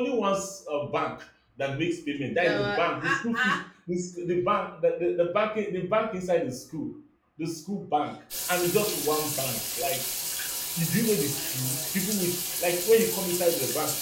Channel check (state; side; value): identical; both; correlation 1.00